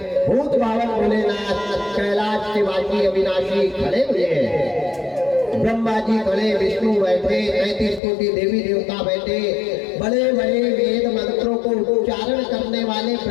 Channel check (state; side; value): drops out; right; at 8.0 s